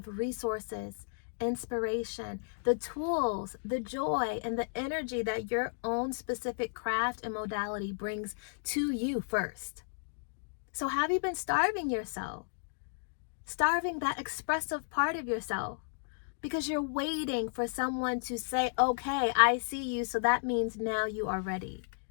resources, inspiration, the tools, the joy, and the energy that your own specific craft and modality brings to you first. So have you been starving yourself? Starving that expressive part of yourself because you're waiting for someone to say, okay, I see you, so that means now you are ready.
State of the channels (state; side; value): silent; right; digital silence